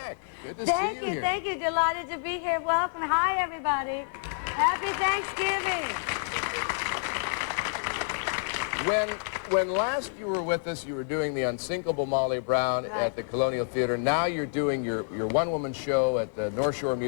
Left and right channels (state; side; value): silent; right; 59 dB below the other